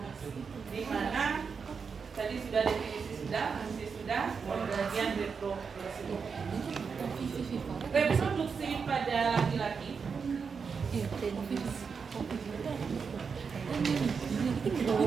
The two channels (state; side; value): quieter; left; 5.7 dB